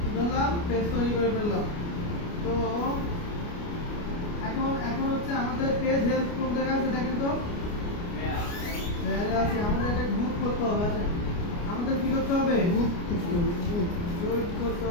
কি করলাম? পেজ তৈরি করে ফেললাম। তো এখন হচ্ছে আমাদের পেজ হেলথ কোন জায়গায় আছে দেখেন তো। আছে। আমাদের এটা গ্রুপ করতে হবে। আছে আমাদের কি করতে হবে? গ্রুপ করতে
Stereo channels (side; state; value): right; late; 29 ms